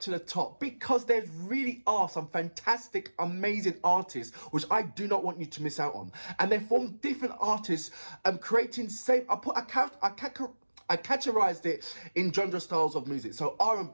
to the top, because there really are some fantastic, amazing artists which I do not want you to miss out on. And they form different artists creating same, I categorized it in genre styles of music. So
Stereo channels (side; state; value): both; inverted; correlation -1.00